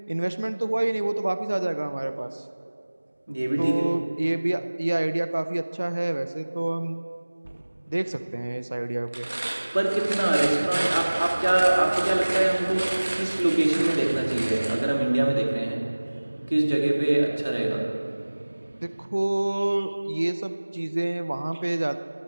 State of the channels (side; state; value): both; inverted; correlation -1.00